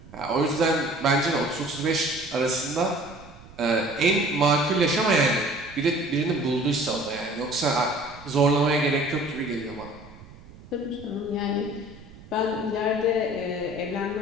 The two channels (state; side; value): noise; right; rumble, 20 dB below the sound